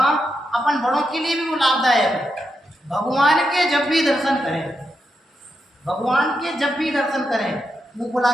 अपन बड़ों के लिए भी वो लाभदायक है। भगवान के जब भी दर्शन करें, भगवान के जब भी दर्शन करें, मुँह फुला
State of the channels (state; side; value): normal; both; correlation 0.85